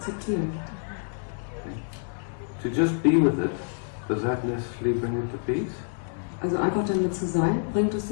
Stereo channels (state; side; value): silent; right; 60 dB below the other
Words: To just be with it, does that necessarily bring it to peace? Also einfach damit zu sein, bringt es